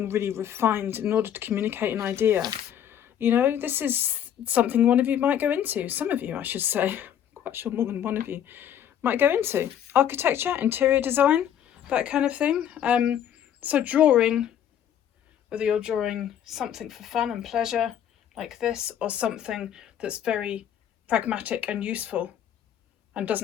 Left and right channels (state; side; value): quieter; right; 9.8 dB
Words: really refined in order to communicate an idea. You know, this is something one of you might go into. Some of you, I should say. I'm quite sure more than one of you might go into. Architecture, interior design, that kind of thing. So drawing, whether you're drawing something for fun and pleasure like this, or something that's very pragmatic and useful and